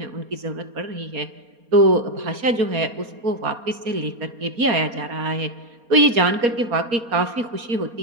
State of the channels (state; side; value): late; left; 4.3 ms